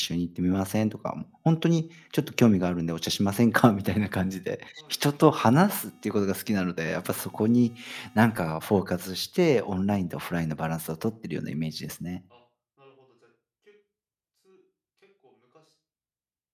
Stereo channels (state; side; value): identical; both; correlation 1.00